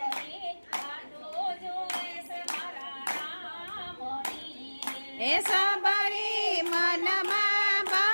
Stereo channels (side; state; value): both; inverted; correlation -1.00